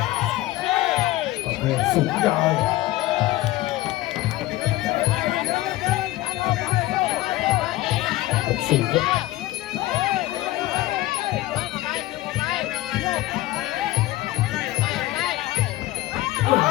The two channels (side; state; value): right; quieter; 17.0 dB